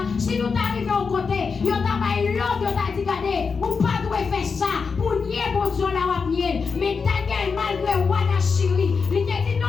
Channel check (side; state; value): right; quieter; 5.3 dB